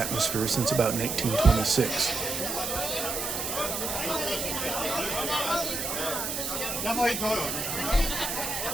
since about 1926.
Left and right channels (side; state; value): right; noise; hiss, 3 dB below the sound